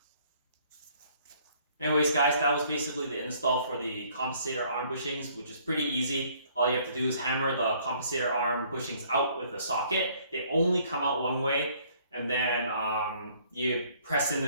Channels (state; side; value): inverted; both; correlation -0.61